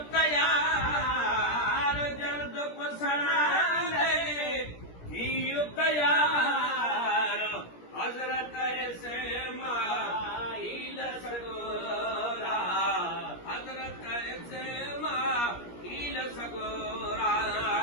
तयार, जल्द कुसनाले थियो तयार, हजरत इस्माइल सगोरा, हजरत इस्माइल सगोरा।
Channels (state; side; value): late; right; 17 ms